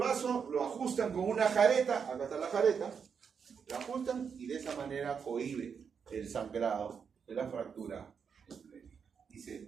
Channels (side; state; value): left; quieter; 6.5 dB